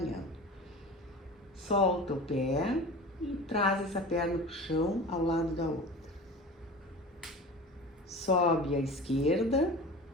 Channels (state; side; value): normal; both; correlation 0.34